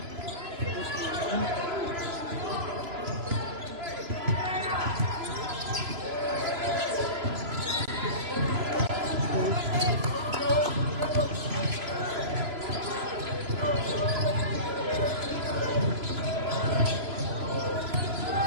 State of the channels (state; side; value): late; left; 3.0 ms